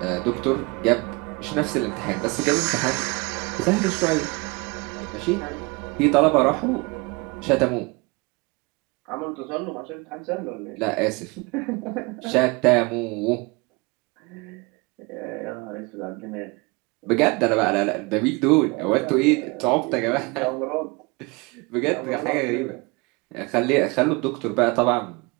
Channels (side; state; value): left; quieter; 27.3 dB